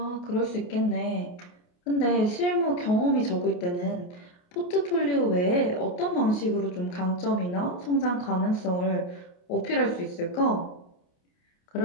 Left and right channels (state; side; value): late; right; 28 ms